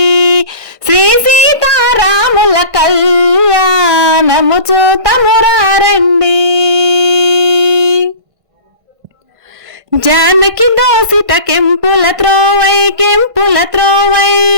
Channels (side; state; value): left; late; 1.5 ms